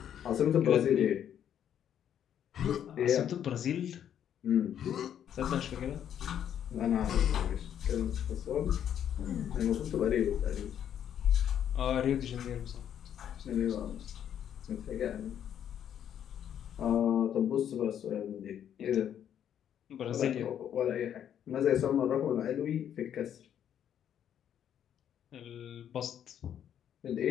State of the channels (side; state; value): right; quieter; 9.6 dB